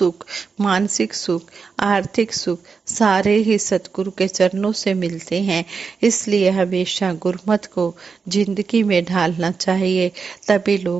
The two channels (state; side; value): quieter; left; 5.2 dB